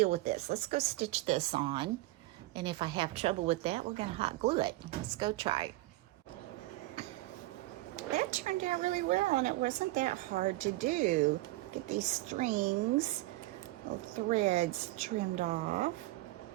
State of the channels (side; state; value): left; quieter; 18.8 dB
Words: with this. Let's go stitch this on. And if I have trouble with that, we're going to hot glue it. Let's go try. That turned out really well, and it wasn't that hard to do. Get these strings, little threads trimmed off.